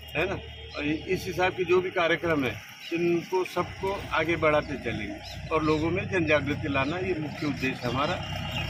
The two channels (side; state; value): both; identical; correlation 1.00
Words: है ना, इस हिसाब के जो भी कार्यक्रम है, इनको सबको आगे बढ़ाते चलेंगे और लोगों में जन जागृति लाना ये मुख्य उद्देश्य हमारा।